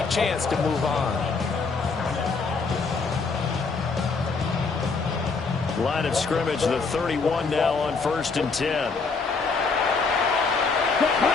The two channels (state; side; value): quieter; right; 4.5 dB